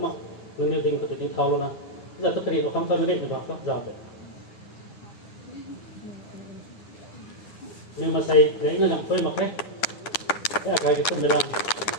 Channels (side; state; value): right; late; 10 ms